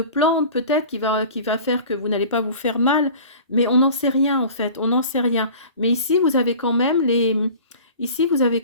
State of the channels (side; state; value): both; inverted; correlation -0.41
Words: plantes, peut-être, qui va faire que vous n'allez pas vous faire mal. Mais on n'en sait rien, en fait. On n'en sait rien. Mais ici, vous avez quand même les